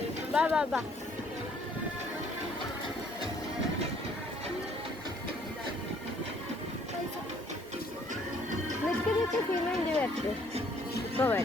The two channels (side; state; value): both; normal; correlation 0.62